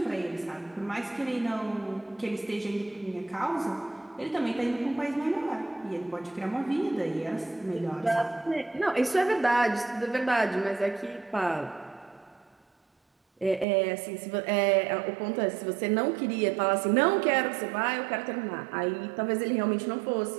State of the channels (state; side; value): drops out; left; at 13.7 s